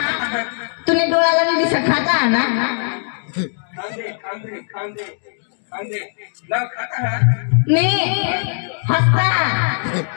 तुने डोळ्याला नाही दिसत खाता ना मी हसता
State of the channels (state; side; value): silent; right; digital silence